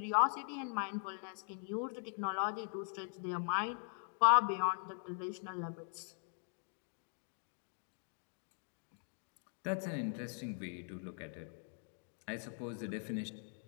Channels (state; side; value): silent; right; 50 dB below the other